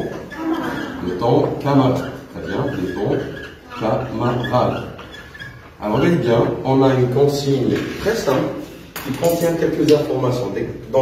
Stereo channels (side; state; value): both; identical; correlation 1.00